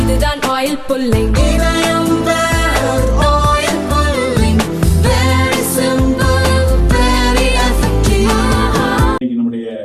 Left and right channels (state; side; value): identical; both; correlation 1.00